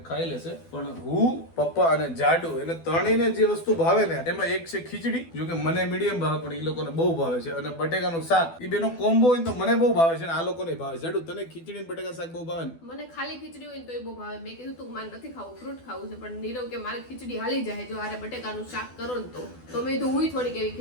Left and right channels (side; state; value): right; late; 12 ms